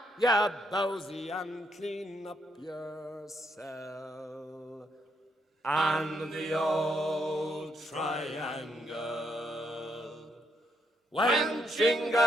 you bowsy, and clean up your cell." And the old triangle went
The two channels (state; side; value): normal; both; correlation 0.76